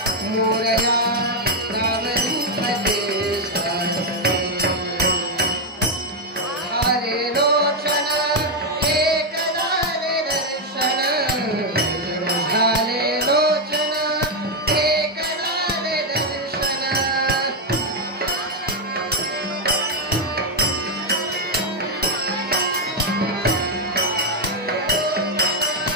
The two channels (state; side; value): normal; both; correlation 0.02